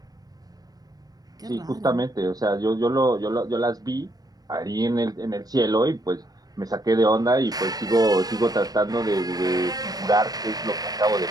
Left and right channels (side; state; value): left; late; 0.18 ms